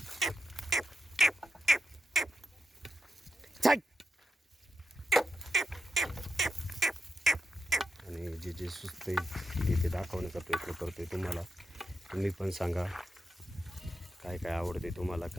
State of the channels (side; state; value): both; normal; correlation 0.87